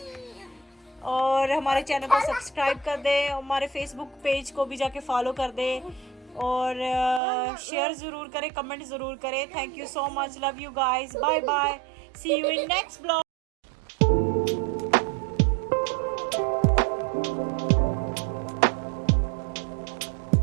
और हमारे चैनल को सब्सक्राइब कर दें। हमारे फेसबुक पेज को भी जाके फॉलो कर दें और शेयर ज़रूर करें, कमेंट ज़रूर करें। Thank you so much, love you guys, bye bye, see you in next blog.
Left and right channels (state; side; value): drops out; left; at 7.2 s